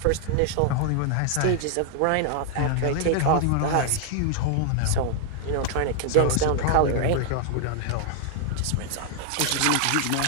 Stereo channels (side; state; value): both; different; correlation 0.00